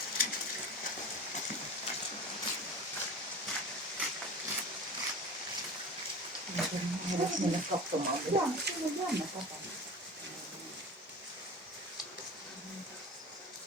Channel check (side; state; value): both; normal; correlation 0.34